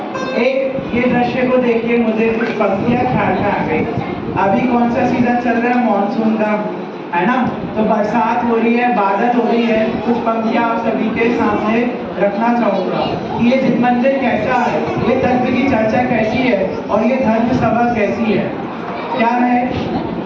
एक ये दृश्य को देखिए, मुझे कुछ पंक्तियां ख्याल में आ गई। अभी कौन सा सीजन चल रहा है? मानसून का, है ना? तो बरसात हो रही है, बादल हो रही है। कुछ पंक्तियां आप सभी के सामने रखना चाहूंगा कि ये जिन मंदिर कैसा है, ये तत्व की चर्चा कैसी है और ये धर्म सभा कैसी है। क्या है?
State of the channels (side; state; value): both; identical; correlation 1.00